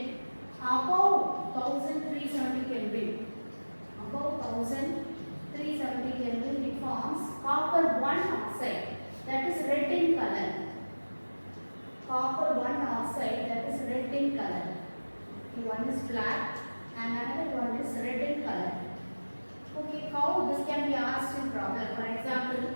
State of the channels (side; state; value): both; inverted; correlation -1.00